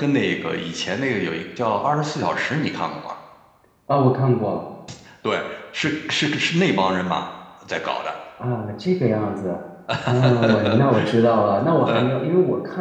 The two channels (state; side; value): identical; both; correlation 1.00